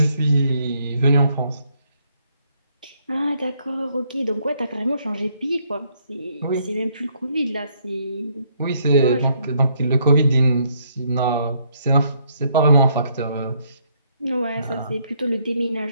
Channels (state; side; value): inverted; both; correlation -0.70